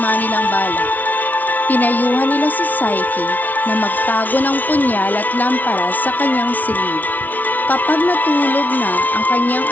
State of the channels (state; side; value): late; right; 0.079 ms